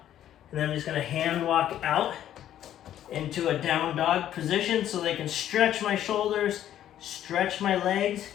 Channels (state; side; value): quieter; right; 11.4 dB